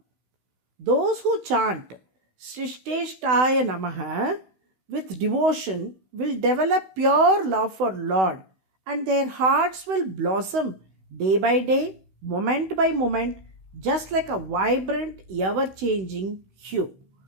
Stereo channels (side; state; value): left; late; 16 ms